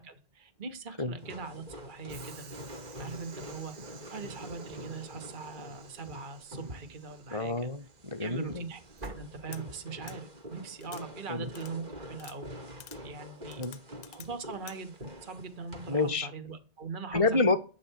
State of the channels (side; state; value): left; late; 1.6 ms